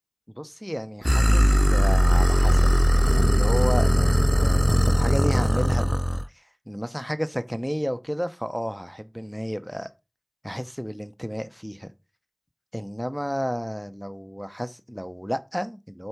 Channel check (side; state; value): both; identical; correlation 1.00